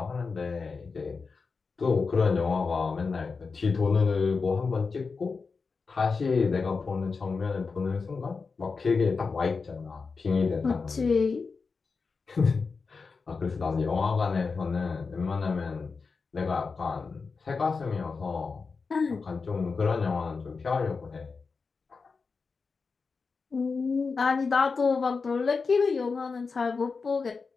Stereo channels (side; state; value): right; quieter; 4.7 dB